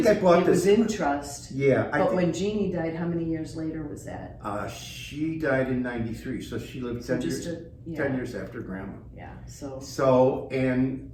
I bought it was this- in trust. Yeah. But when Jeannie died, how many years later was that? She died in 93, so she lived So 10 years, just 10 years after Grandma. Yeah, so, So, and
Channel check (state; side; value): identical; both; correlation 1.00